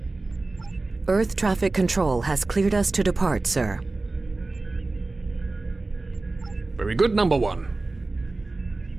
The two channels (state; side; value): quieter; left; 3.3 dB